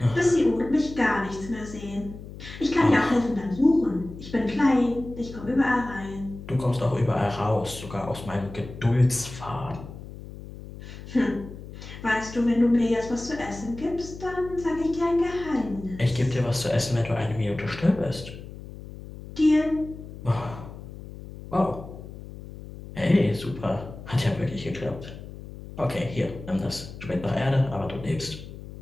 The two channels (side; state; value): left; noise; hum, 13 dB below the sound